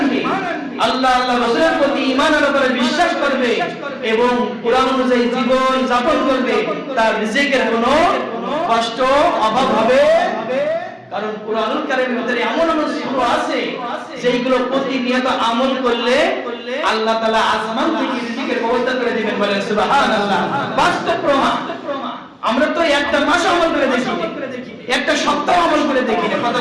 আল্লাহ রাসূলের প্রতি ঈমানের উপরে বিশ্বাস করবে এবং কোরআন অনুযায়ী জীবন যাপন করবে, তার রিজিকের কোনো কষ্ট অভাব হবে। কারণ কুরআনুল কারীমের ভিতরে এমন এমন সূরা আছে যেগুলো প্রতিনিয়ত আমল করলে আল্লাহ তাআলা আসমান থেকে রিজিকের ব্যবস্থা করে দিবেন। বলেন সুবহানাল্লাহ। বাস্তব প্রমাণ। আমরা তো একটা মাস আমল করে দেখি, একটা সপ্তাহ আমল করে দেখি না, কথা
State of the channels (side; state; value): both; identical; correlation 1.00